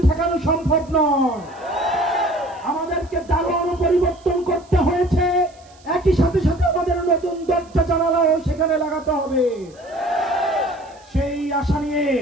ঠেকানো সম্ভব নয়। আমাদেরকে দারোয়ানও পরিবর্তন করতে হয়েছে, একই সাথে সাথে আমাদের নতুন দরজা জানালাও সেখানে লাগাতে হবে। সেই আশা নিয়ে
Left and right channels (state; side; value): noise; right; hiss, 28 dB below the sound